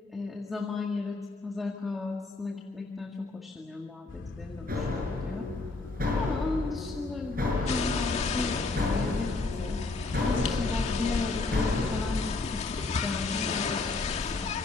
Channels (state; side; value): quieter; right; 3.5 dB